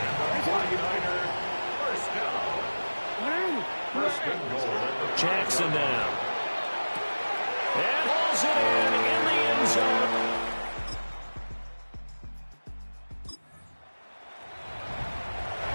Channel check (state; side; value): inverted; both; correlation -1.00